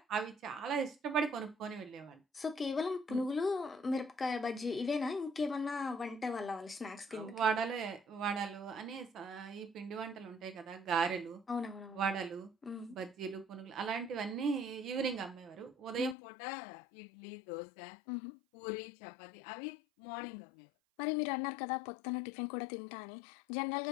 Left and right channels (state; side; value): drops out; right; at 16.2 s